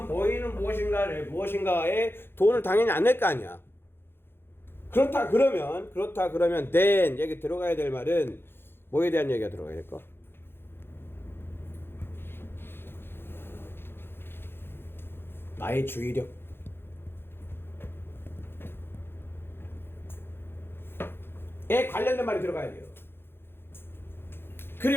보이는 무엇인가에 돈을 당연히 안 낼 거 아니야. 그렇다 그러면 then 여기 들어가야 될 말은 뭐에 대한 얘기가 들어가야 될까? 나의 주의력에 관련된 말이 들어가야 돼요.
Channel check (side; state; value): right; late; 0.11 ms